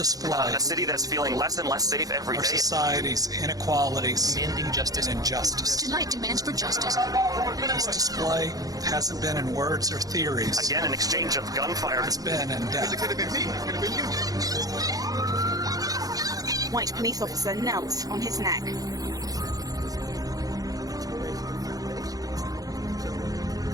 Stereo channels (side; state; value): left; late; 0.18 ms